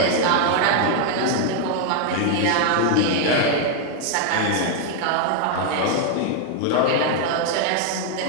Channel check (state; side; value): different; both; correlation 0.00